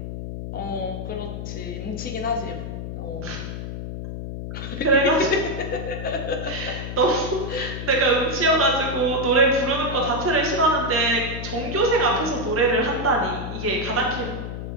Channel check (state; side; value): noise; left; hum, 7 dB below the sound